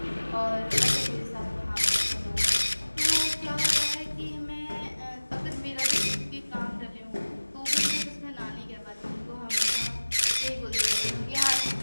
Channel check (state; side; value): inverted; both; correlation -1.00